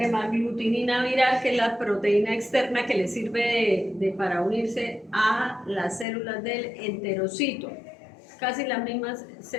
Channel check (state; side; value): drops out; right; at 6.1 s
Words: viral, que es la proteína externa que le sirve para unirse a las células del enterocito, casi las mismas,